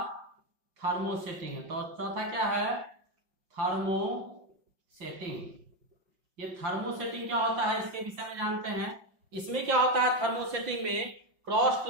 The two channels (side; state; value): left; late; 5.8 ms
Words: थर्मोसेटिंग। तो चौथा क्या है, थर्मोसेटिंग। ये थर्मोसेटिंग क्या होता है इसके विषय में जानते हैं। इसमें क्या होता है थर्मोसेटिंग में, क्रॉस